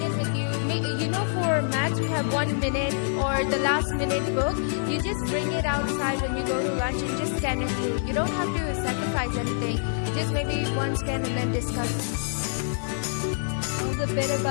with you. For maths, we have 1 minute or the last minute book. You just bring it outside when you go to lunch and just scan it through. You don't have to sacrifice anything. Just maybe one scan and then discuss. The bit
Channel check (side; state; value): right; silent; 60 dB below the other